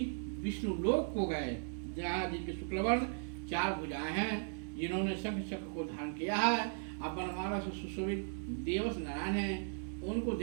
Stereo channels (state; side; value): silent; left; 53 dB below the other